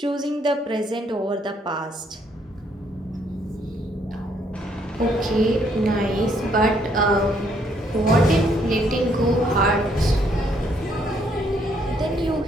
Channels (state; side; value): normal; both; correlation 0.69